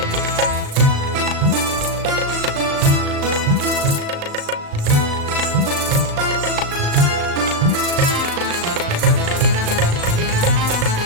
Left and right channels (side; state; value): left; late; 39 ms